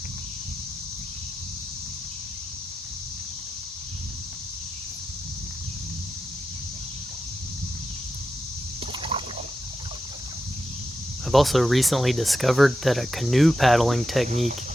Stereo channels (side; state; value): both; normal; correlation 0.89